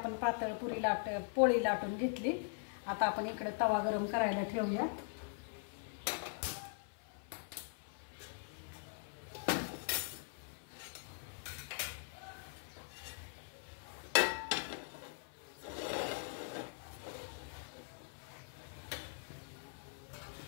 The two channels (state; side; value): silent; right; 50 dB below the other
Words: पातळ पोळी लाटून घेतली. आता आपण इकडे तवा गरम करायला ठेवूया.